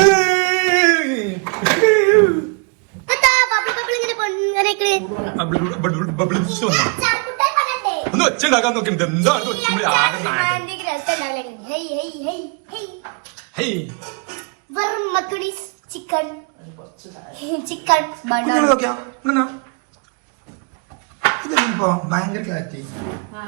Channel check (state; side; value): quieter; left; 35.6 dB